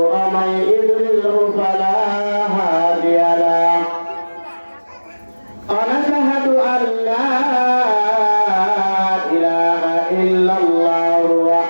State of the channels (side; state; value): both; inverted; correlation -1.00